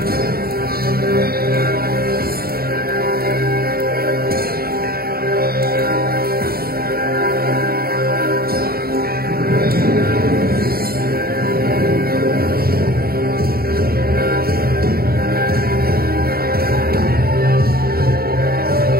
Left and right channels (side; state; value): left; late; 0.44 ms